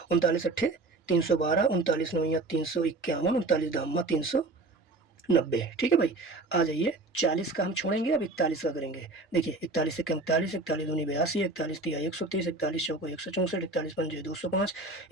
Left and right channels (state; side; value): quieter; left; 3.3 dB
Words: 39 अट्ठे 312, 39 नवैया 351, 39 दामा 390, ठीक है भाई। आ जाइए 40 का हम छोड़ेंगे, अब 41 का करेंगे। देखिए 41 से कम 41, 41 दूनी 82, 41 तिया 123, 41 चौको 164, 41 पंजे 205,